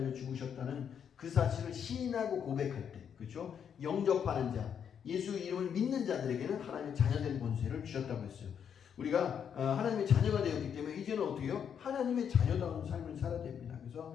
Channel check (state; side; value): quieter; right; 7.9 dB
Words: 죽으셨다는 그 사실을 시인하고 고백할 때, 그렇죠? 영접하는 자, 예수 이름을 믿는 자들에게는 하나님의 자녀된 권세를 주셨다고 했어요. 우리가 하나님의 자녀가 되었기 때문에 이제는 어떻게 해요? 하나님의 자녀다운 삶을 살아야 됩니다. 그래서